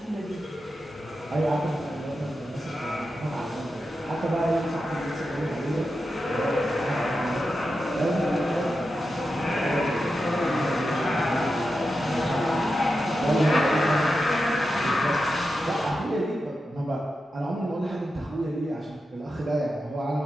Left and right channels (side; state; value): both; normal; correlation 0.89